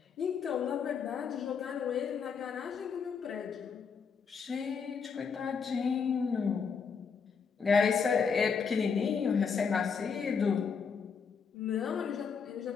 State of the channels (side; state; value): right; quieter; 6.0 dB